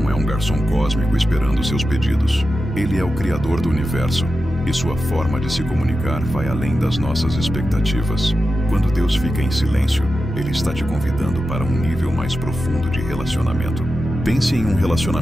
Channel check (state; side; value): normal; both; correlation 0.91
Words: é um garçom cósmico esperando seus pedidos. Ele é o Criador do universo. E sua forma de se comunicar vai além das nossas expectativas. Quando Deus fica em silêncio, Ele está te convidando para um nível mais profundo de relacionamento. Pense em um